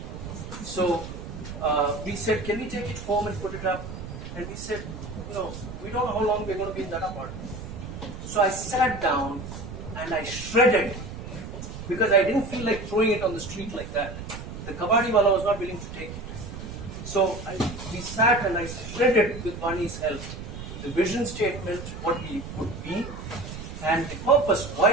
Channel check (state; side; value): noise; right; rumble, 10 dB below the sound